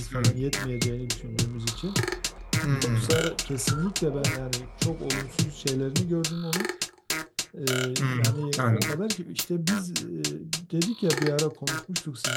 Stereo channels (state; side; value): identical; both; correlation 1.00